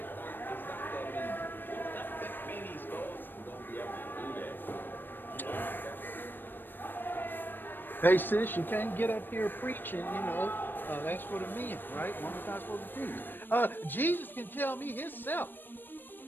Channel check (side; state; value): right; late; 0.094 ms